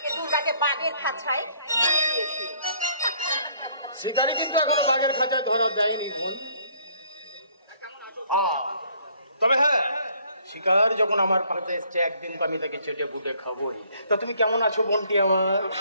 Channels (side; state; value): both; inverted; correlation -0.63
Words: দুর্গাকে বাঘের খাঁচায় দিয়েছি। শিকারি কিন্তু এখনো বাঘের খাঁচায় ধরা দেয়নি বল। তবে হ্যাঁ শিকার যখন আমার পাশে এসছে একদিন তো আমি তাকে চেটে বুটে খাবোই। তা তুমি কেমন আছো বোনটি আমার?